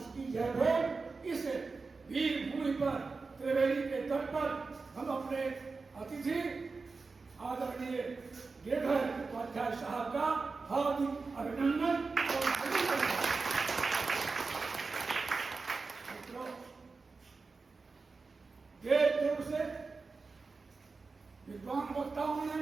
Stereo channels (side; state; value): left; quieter; 4.2 dB